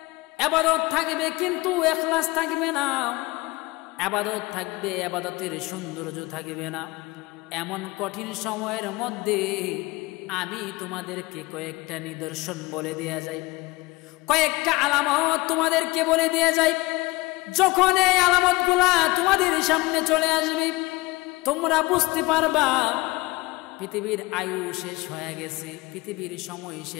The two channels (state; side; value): quieter; right; 22.1 dB